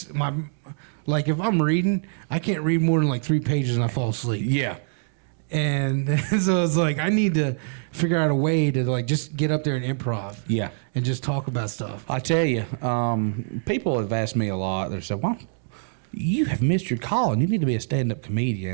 I'm reading, I can't read more than like 3 pages and I fall asleep. Yeah. And so it's like I need to figure out a way to like just get up there and improv. Yeah. And just talk about stuff. I tell you, people have asked me a lot. They said, "Well, you have missed your calling. You need to be a stand-up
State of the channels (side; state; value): left; silent; digital silence